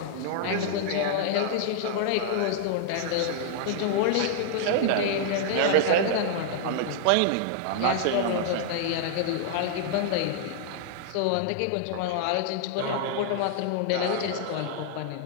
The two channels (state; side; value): different; both; correlation 0.00